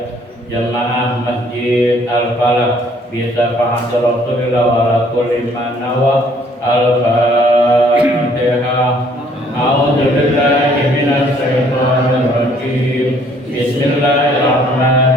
jamaah masjid al-falah bisa fa'at rasulillah wa ala kulli man nawa al-fatihah. A'udzu billahi minas syaitonir rajim.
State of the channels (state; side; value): normal; both; correlation 0.61